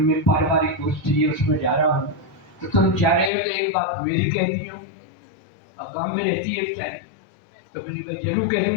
में पारिवारिक गोष्ठी है उसमें जा रहा हूँ, तो तुम जा रहे हो तो एक बात मेरी कह दी हो, अब गाँव में रहती है क्या? तो मैंने जरूर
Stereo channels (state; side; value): drops out; right; at 3.3 s